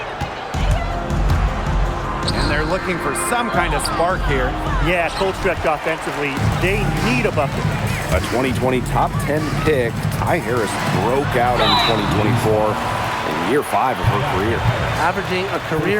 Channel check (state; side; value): identical; both; correlation 1.00